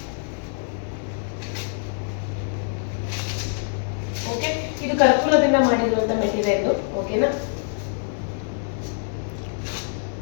ಓಕೆ. ಇದು ಕರ್ಪೂರದಿಂದ ಮಾಡಿರುವಂಥ ಮೆಟೀರಿಯಲ್. ಓಕೆನಾ,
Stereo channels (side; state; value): right; silent; digital silence